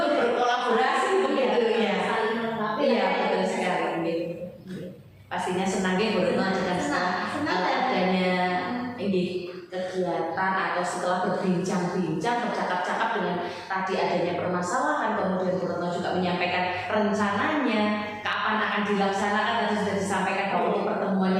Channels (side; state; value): both; identical; correlation 1.00